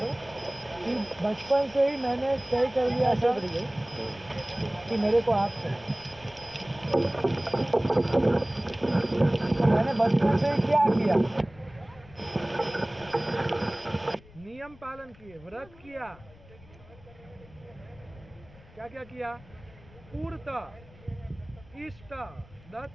कि बचपन से ही मैंने तय कर लिया था कि मेरे को आप चाहिए। तो मैंने बचपन से ही क्या किया, नियम पालन किए, व्रत किया। क्या क्या किया? पूर्त, इष्ट,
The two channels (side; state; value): left; noise; rumble, 23 dB below the sound